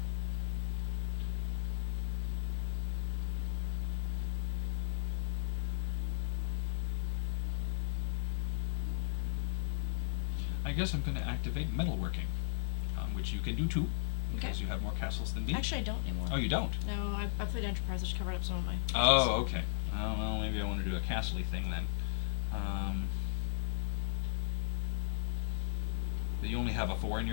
I guess I'm going to activate metalworking, which you can do too, because Okay. you have more castles than me. Actually, I don't anymore. Oh, you don't? No, I played enterprise, which covered up some of my... Oh, okay. Well, maybe I want to do a castle-y thing then. But you only have a 4 in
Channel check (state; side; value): silent; right; 54 dB below the other